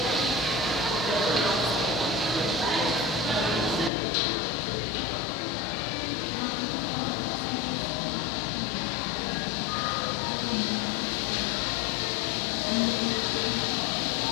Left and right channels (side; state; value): right; drops out; at 3.9 s